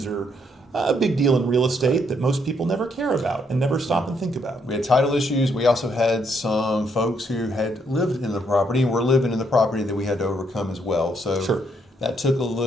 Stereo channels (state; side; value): normal; both; correlation 0.72